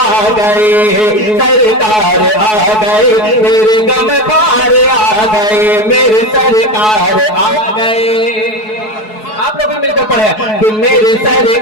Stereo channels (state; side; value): late; right; 4.7 ms